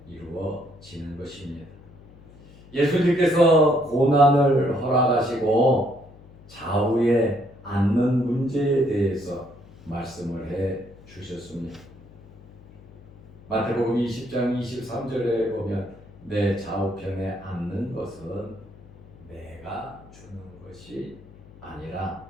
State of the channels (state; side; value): noise; left; hum, 22 dB below the sound